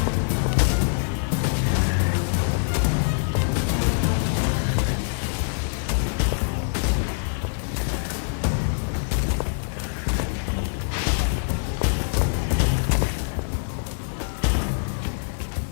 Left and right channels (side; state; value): right; silent; digital silence